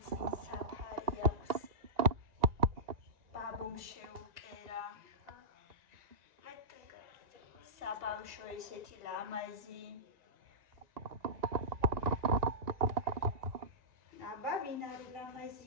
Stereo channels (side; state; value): left; late; 1.9 ms